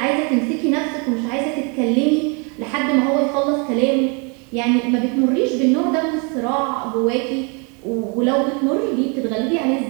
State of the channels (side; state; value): left; quieter; 34.2 dB